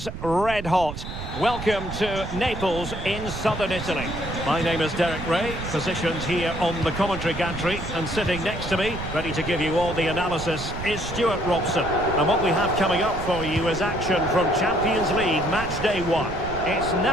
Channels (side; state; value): right; noise; rumble, 8 dB below the sound